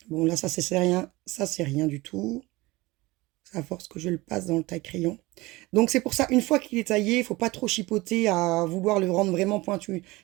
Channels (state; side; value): quieter; left; 21.2 dB